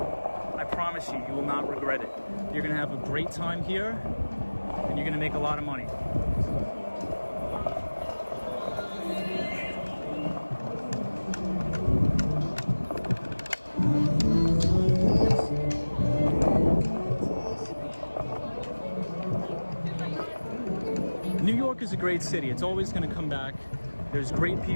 promise you, you will not regret it. You're gonna have a great time here, and you're gonna make a lot of money. New York is a great city. It's always going to come back. There's great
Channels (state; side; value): inverted; both; correlation -1.00